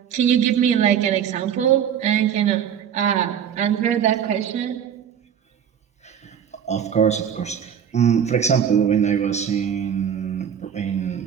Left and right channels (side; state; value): left; quieter; 8.6 dB